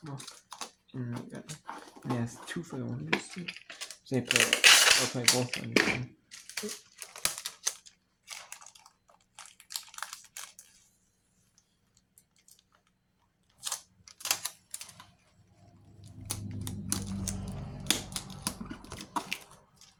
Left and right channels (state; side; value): identical; both; correlation 1.00